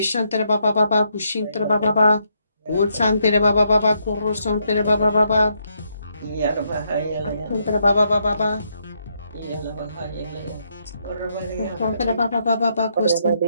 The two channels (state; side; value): inverted; both; correlation -0.77